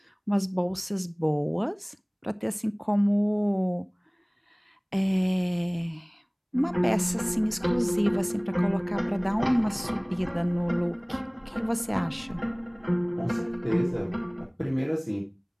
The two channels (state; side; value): identical; both; correlation 1.00